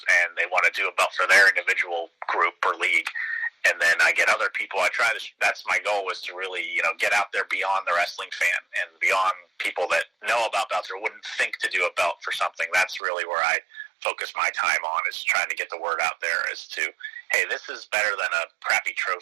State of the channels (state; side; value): drops out; left; at 13.0 s